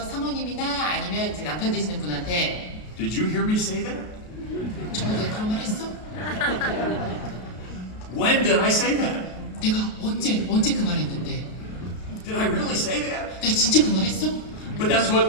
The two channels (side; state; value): right; late; 33 ms